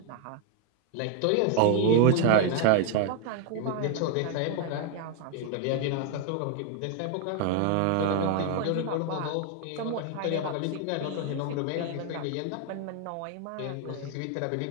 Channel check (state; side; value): different; both; correlation 0.00